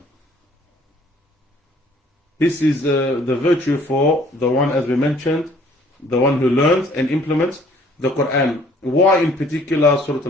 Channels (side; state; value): both; normal; correlation 0.58